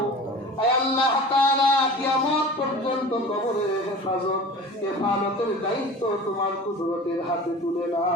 আয় আল্লাহ তাআলা কিয়ামত পর্যন্ত কবরের হেফাজতের দায়িত্ব তোমার কুদরতের হাতে তুলে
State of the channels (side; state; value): both; normal; correlation 0.38